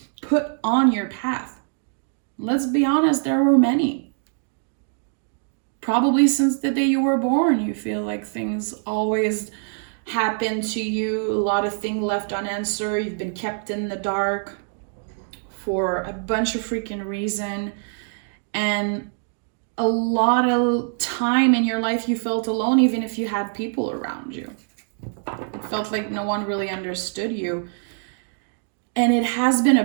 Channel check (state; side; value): silent; left; 62 dB below the other